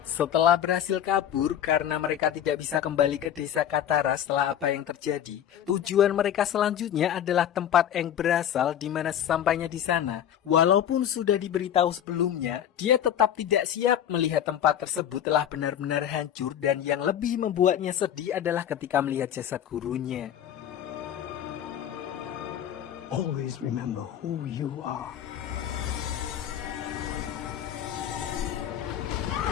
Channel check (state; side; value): quieter; right; 10.1 dB